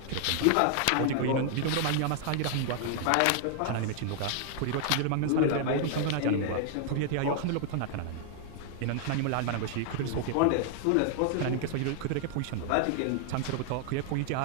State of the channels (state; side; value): different; both; correlation 0.00